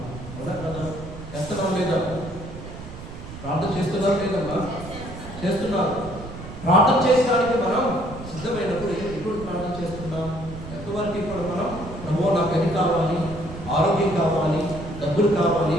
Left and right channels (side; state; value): right; noise; rumble, 12 dB below the sound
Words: కదా కదా? చేస్తున్నాం లేదా? ప్రార్థన చేస్తున్నారు లేదమ్మా? చేస్తున్నారు. ప్రార్థన చేయడానికి మనం సిద్ధమైనప్పుడు ఎప్పుడు ప్రార్థన చేస్తున్నాం? ఎంతవరకు ఇప్పుడు మనం ప్రభువా నాకు అది కావాలి, ఆరోగ్యం కావాలి, డబ్బులు కావాలి,